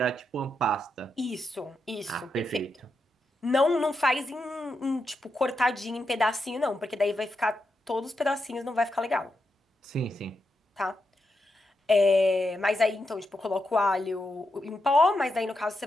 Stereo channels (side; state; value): both; normal; correlation 0.85